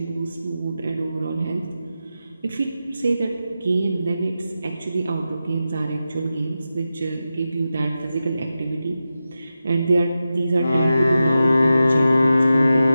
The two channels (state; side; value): inverted; both; correlation -0.91